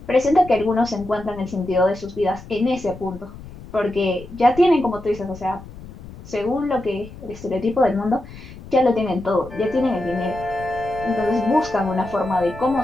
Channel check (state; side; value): noise; left; rumble, 16 dB below the sound